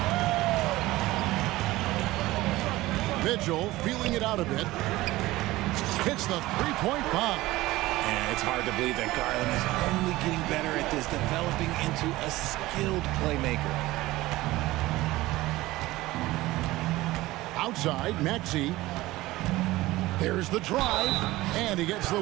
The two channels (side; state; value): left; quieter; 18.2 dB